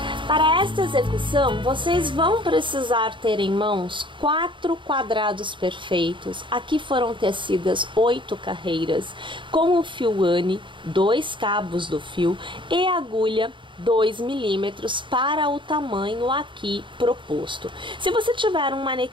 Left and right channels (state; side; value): late; left; 0.24 ms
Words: Para esta execução, vocês vão precisar ter em mãos 4 quadrados perfeitos. Aqui foram tecidas 8 carreiras, com o fio Anne, 2 cabos do fio e agulha 2 milímetros para o tamanho aqui proposto. Se você tiver um